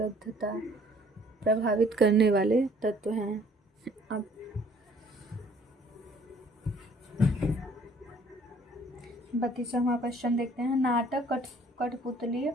प्रभावित करने वाले तत्व हैं। अब 32वां क्वेश्चन देखते हैं। नाटक कठपुतली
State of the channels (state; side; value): normal; both; correlation 0.58